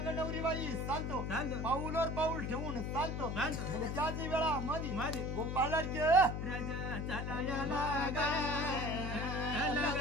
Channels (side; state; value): left; noise; hum, 3 dB below the sound